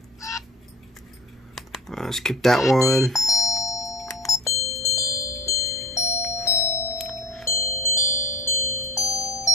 Skip that one.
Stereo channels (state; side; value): normal; both; correlation 0.38